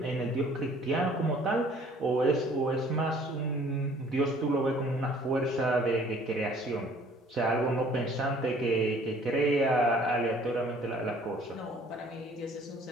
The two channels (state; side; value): normal; both; correlation 0.55